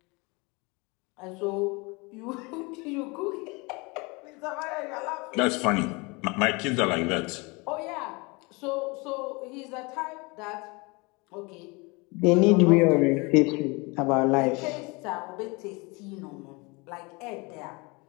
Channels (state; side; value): quieter; right; 27.3 dB